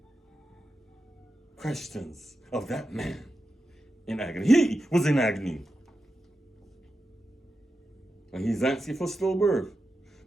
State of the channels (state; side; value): normal; both; correlation 0.90